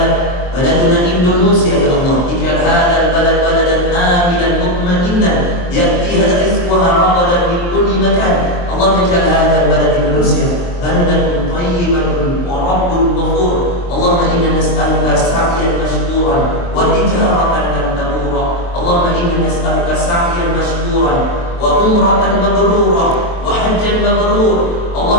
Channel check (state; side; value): late; right; 23 ms